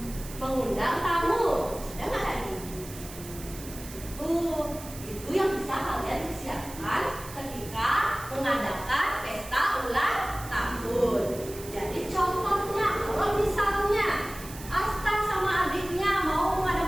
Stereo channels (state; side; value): noise; right; hiss, 14 dB below the sound